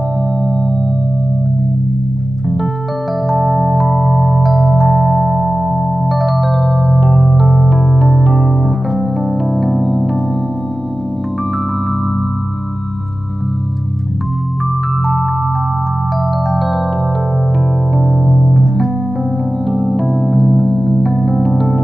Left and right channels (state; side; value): normal; both; correlation 0.95